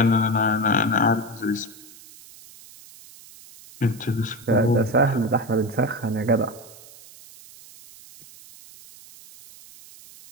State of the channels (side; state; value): right; noise; hiss, 21 dB below the sound